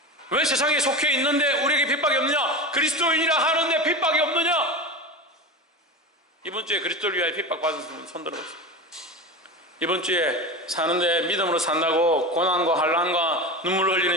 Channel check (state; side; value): normal; both; correlation 0.25